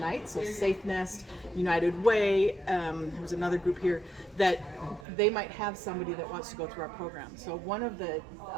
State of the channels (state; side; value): drops out; left; at 5.1 s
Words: so Safe Nest, United Way, there's another group here, that they might have somebody that wants to go through our program. So one of the